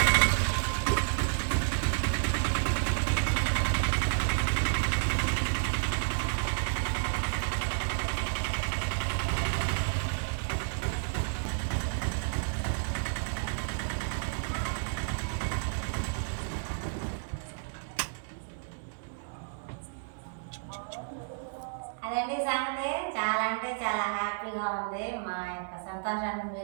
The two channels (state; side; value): silent; left; digital silence